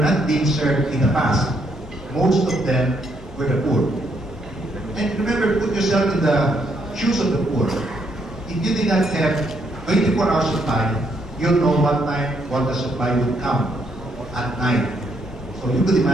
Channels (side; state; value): both; normal; correlation 0.73